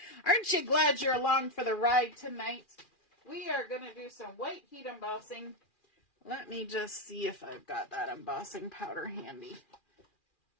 Aren't you glad you're along for the ride tonight? We are going to do some white heat embossing. Let me just see if I've got that embossing powder handy.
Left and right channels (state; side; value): late; right; 2.4 ms